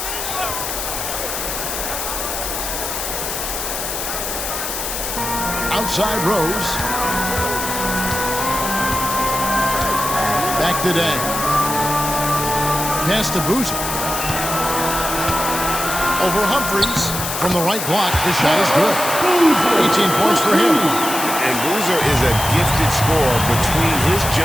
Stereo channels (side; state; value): left; noise; hiss, 4 dB below the sound